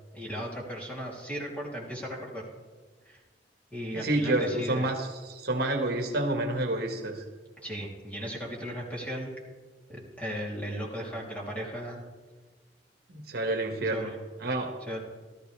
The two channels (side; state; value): both; normal; correlation 0.34